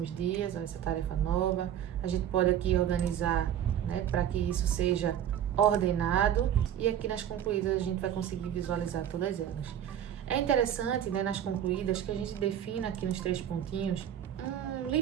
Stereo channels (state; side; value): quieter; left; 10.1 dB